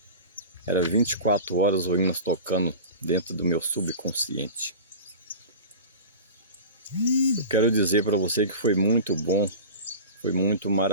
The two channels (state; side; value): inverted; both; correlation -0.33